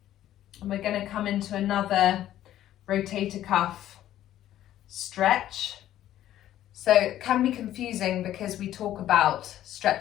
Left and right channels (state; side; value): quieter; right; 12.6 dB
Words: and we're going to come into another rotator cuff stretch. So it can be confusing because we talk about